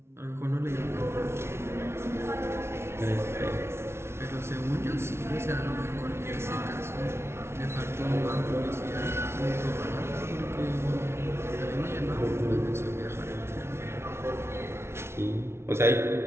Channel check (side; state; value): left; late; 0.12 ms